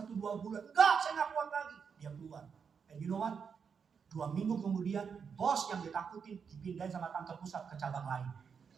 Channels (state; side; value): quieter; left; 6.4 dB